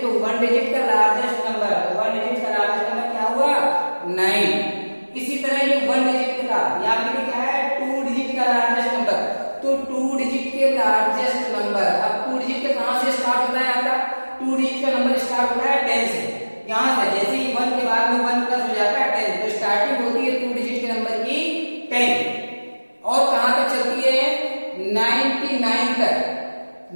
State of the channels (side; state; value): both; inverted; correlation -1.00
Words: 1 डिजिट का लार्जेस्ट नंबर, 1 डिजिट का लार्जेस्ट नंबर क्या हुआ, 9। इसी तरह ये 1 डिजिट का, यहाँ पे क्या है, 2 डिजिट का लार्जेस्ट नंबर, तो 2 डिजिट के लार्जेस्ट नंबर। अब 2 डिजिट का कहां से स्टार्ट होता है आपका, 2 डिजिट का नंबर स्टार्ट होता है 10 से। यहां से जैसे ही 1 के बाद में 1 प्लस हो जाता है 10, तो स्टार्टिंग होती है 2 डिजिट के नंबर की 10, और कहां तक चलती है, 99 तक।